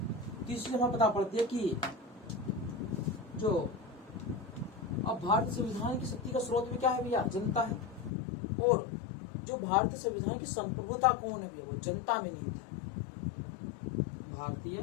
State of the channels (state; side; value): drops out; right; at 8.1 s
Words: तीसरी हमें पता पड़ती है कि जो अब भारतीय संविधान की शक्ति का स्रोत भी क्या है भैया, जनता है, और जो भारतीय संविधान की संप्रभुता कौन है भैया, वो जनता में नहीं था। भारतीय